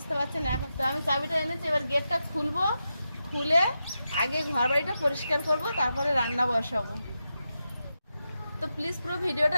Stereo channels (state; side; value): inverted; both; correlation -0.89